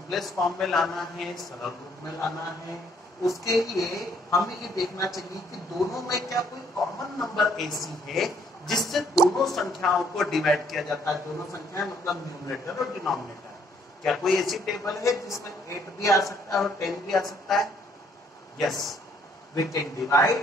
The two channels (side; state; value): both; normal; correlation 0.65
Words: फॉर्म में लाना है, सरल रूप में लाना है। उसके लिए हमें ये देखना चाहिए कि दोनों में क्या कोई कॉमन नंबर ऐसी है जिससे दोनों संख्याओं को डिवाइड किया जाता है। दोनों संख्याएं मतलब न्यूमरेटर और डिनोमिनेटर। क्या कोई ऐसी टेबल है जिसमें 8 भी आ सकता है और 10 भी आ सकता है? Yes, we can